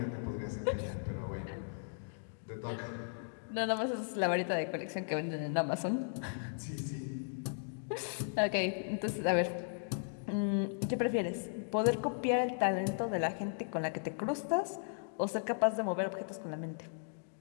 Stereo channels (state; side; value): silent; right; digital silence